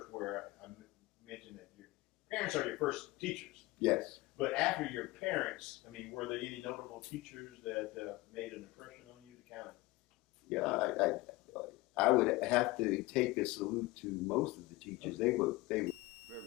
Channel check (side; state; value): right; quieter; 20.5 dB